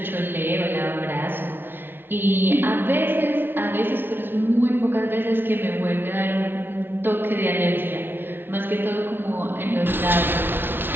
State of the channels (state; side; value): late; left; 0.10 ms